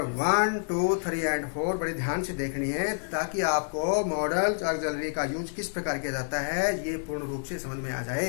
1, 2, 3 एंड 4 बड़े ध्यान से देखनी है, ताकि आपको मॉडल ऑक्सिलरी का यूज किस प्रकार किया जाता है ये पूर्ण रूप से समझ में आ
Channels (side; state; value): right; silent; 59 dB below the other